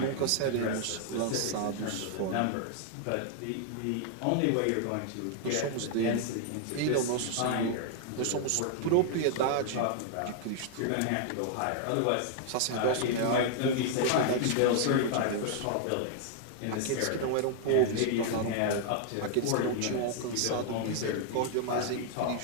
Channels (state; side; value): different; both; correlation 0.00